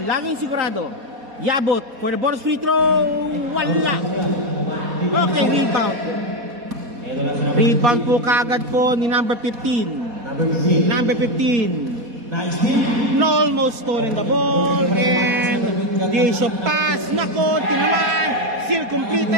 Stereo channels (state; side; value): late; left; 4.2 ms